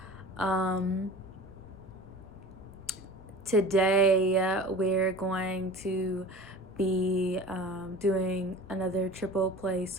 Um, Today we're going to be doing another triple play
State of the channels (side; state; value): left; noise; rumble, 20 dB below the sound